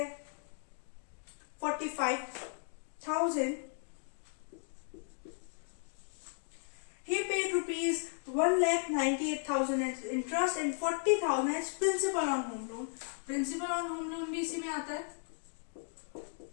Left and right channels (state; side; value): silent; right; 54 dB below the other